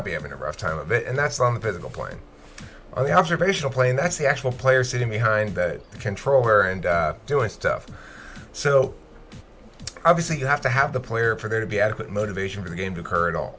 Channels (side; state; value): both; identical; correlation 1.00